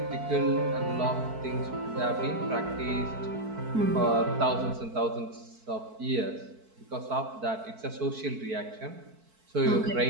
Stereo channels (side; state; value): left; late; 4.5 ms